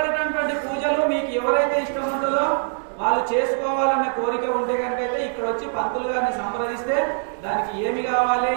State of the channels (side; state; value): left; silent; digital silence